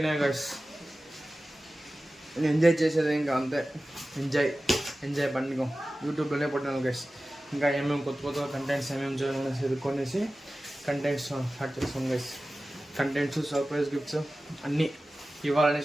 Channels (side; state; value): both; normal; correlation 0.96